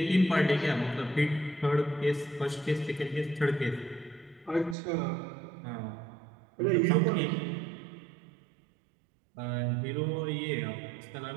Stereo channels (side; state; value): left; drops out; at 4.8 s